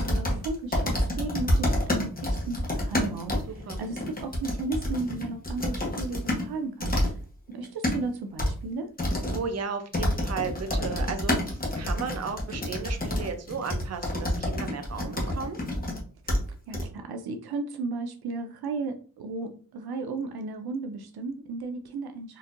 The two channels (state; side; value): normal; both; correlation 0.57